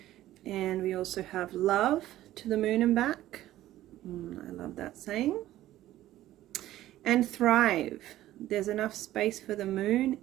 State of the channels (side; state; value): left; quieter; 14.3 dB